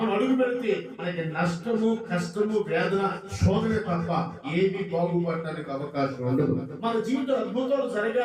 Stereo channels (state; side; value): identical; both; correlation 1.00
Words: అడుగు పెడితే మనకి నష్టము, కష్టము, వేదన, శోధన తప్ప ఏది బాగుపడటానికి అవకాశం ఉండదు. మన జీవిత అద్భుతాలు